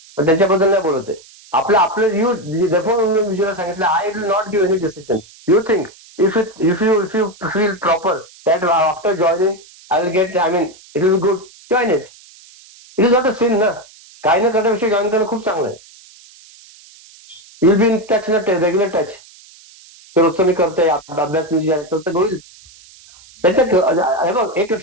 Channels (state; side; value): noise; right; hiss, 24 dB below the sound